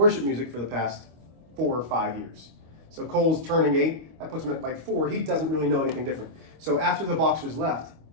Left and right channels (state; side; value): late; left; 25 ms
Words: music for the past 4 or 5 years. So Cole's turning 8, that puts him at like 4. He doesn't really know anything different. So after the Boxers left,